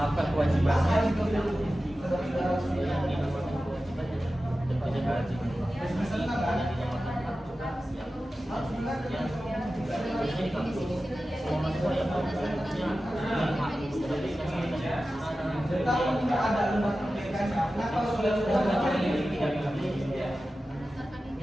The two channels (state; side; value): normal; both; correlation 0.94